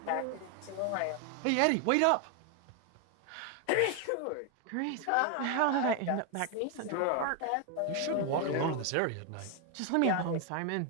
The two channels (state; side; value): different; both; correlation 0.00